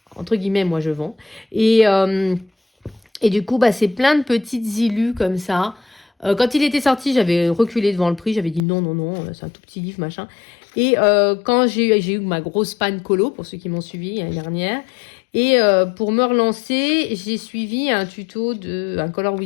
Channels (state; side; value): drops out; right; at 8.6 s